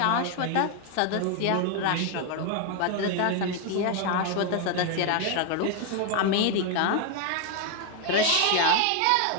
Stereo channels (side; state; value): both; different; correlation 0.01